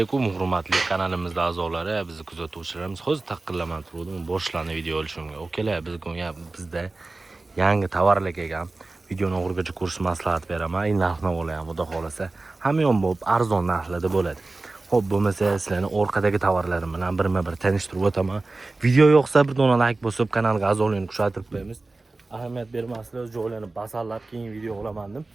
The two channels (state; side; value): quieter; left; 3.3 dB